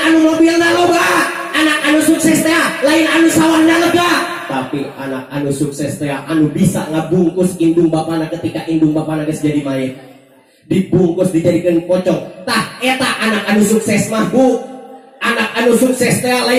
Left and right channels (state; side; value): identical; both; correlation 1.00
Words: anu mobilna loba, anak anu sukses teh lain anu sawahna lega. Tapi anak anu sukses teh anu bisa ngabungkus indung bapana ketika indung bapana geus jadi mayit, dibungkus dijadikeun pocong. Tah eta anak anu sukses mah Bu. Anak anu sukses teh